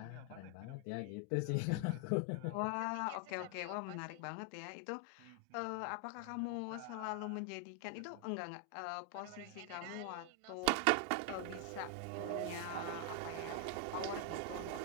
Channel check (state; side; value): different; both; correlation 0.00